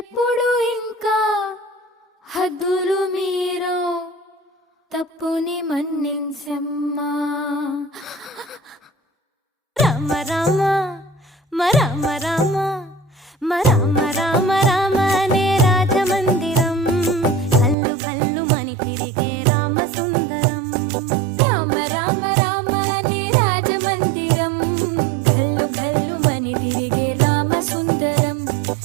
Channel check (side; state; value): left; drops out; at 17.8 s